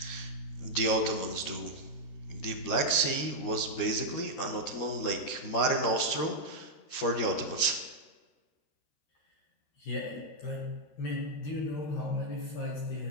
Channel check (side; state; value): right; late; 13 ms